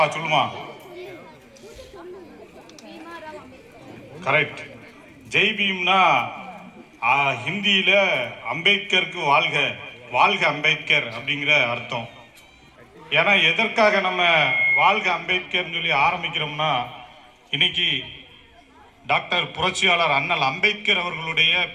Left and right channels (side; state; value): both; identical; correlation 1.00